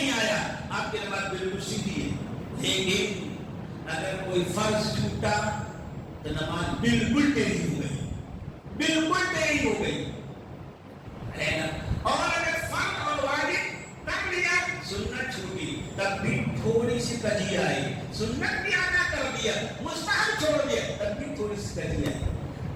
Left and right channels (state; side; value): identical; both; correlation 1.00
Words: آیا، آپ کی نماز بالکل سیدھی ہے. لیکن اگر کوئی فرض چھوٹا تو نماز بالکل ٹیڑھی ہو گئی، بالکل ٹیڑھی ہو گئی ہے نا. اور اگر فرض اور واجب کر لیا، سنت چھوٹی، تب بھی تھوڑی سی کجی آئی. سنت بھی ادا کر دیا، مستحب چھوڑ دیا، تب بھی تھوڑی سی کجی آئی.